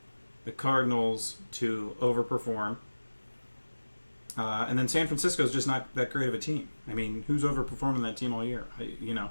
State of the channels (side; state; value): both; inverted; correlation -1.00